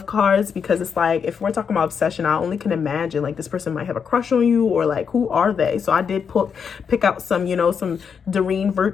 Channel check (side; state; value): right; quieter; 6.6 dB